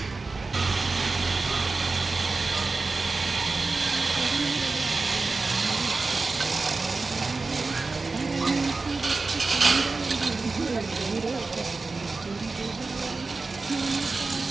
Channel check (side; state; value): left; quieter; 3.8 dB